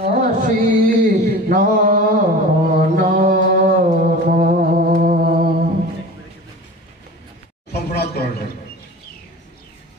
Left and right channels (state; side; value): normal; both; correlation 0.37